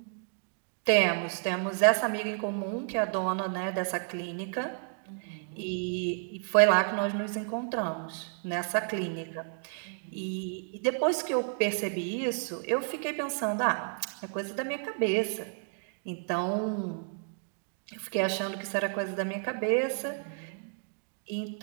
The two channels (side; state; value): left; silent; 57 dB below the other